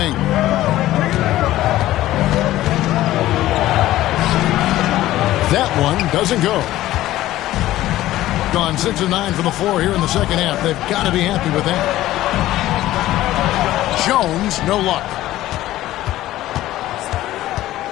That one doesn't go. Gone 6 of 9 from the floor here in the second half. They've got to be happy with that. Jones, no luck.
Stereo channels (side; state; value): right; quieter; 15.1 dB